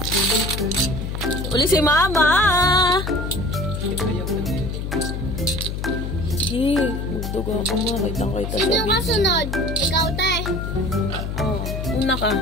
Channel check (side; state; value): left; noise; hum, 4 dB below the sound